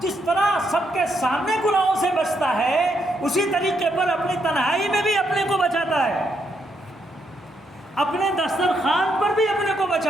طرح سب کے سامنے گناہوں سے بچتا ہے اسی طریقے پر اپنی تنہائی میں بھی اپنے کو بچاتا ہے، اپنے دسترخوان پر بھی اپنے کو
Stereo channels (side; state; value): both; normal; correlation 0.78